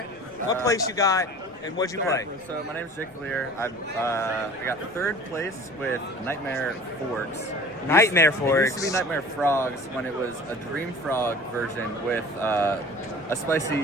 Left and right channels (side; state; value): left; noise; rumble, 28 dB below the sound